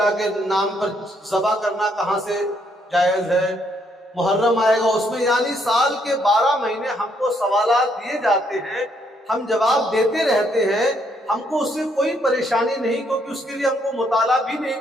کے نام پر ذبح کرنا کہاں سے جائز ہے۔ محرم آئے گا، اس میں یعنی سال کے 12 مہینے ہم کو سوالات دیے جاتے ہیں، ہم جواب دیتے رہتے ہیں، ہم کو اس سے کوئی پریشانی نہیں، کیونکہ اس کے لیے ہم کو مطالعہ بھی نہیں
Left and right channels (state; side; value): normal; both; correlation 0.72